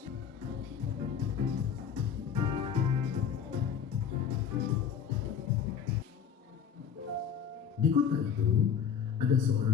Di kota itu ada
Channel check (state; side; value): quieter; right; 7.7 dB